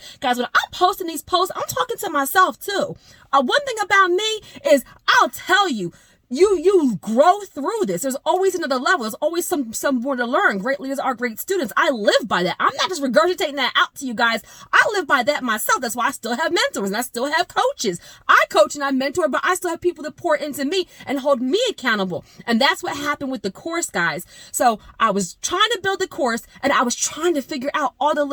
Guys, when I'm posting these posts, I'm talking to myself too. One thing about me is I'll tell you, you grow through this. There's always another level. There's always some more to learn. Great leaders are great students. I live by that. I'm not just regurgitating that out to you guys. I live by that myself. That's why I still have mentors and I still have coaches. I coach and I mentor, but I still have people that pour into me and hold me accountable. And that's what happened with the course, guys. So I was trying to build the course and I was trying to figure out all the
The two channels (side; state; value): both; identical; correlation 1.00